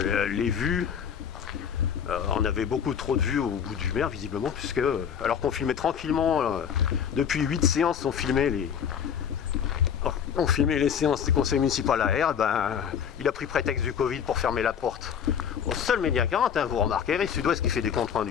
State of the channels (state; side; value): quieter; right; 7.9 dB